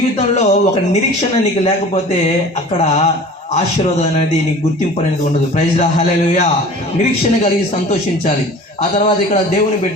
ఒక నిరీక్షణ నీకు లేకపోతే అక్కడ ఆశీర్వాదం అనేది నీకు గుర్తింపు అనేది ఉండదు. ప్రైజ్ లా, హల్లెలూయా. నిరీక్షణ కలిగి సంతోషించాలి. ఆ తర్వాత ఇక్కడ దేవుని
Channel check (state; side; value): normal; both; correlation 0.42